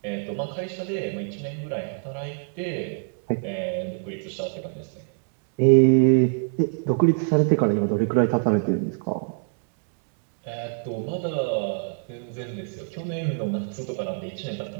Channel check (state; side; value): silent; left; 61 dB below the other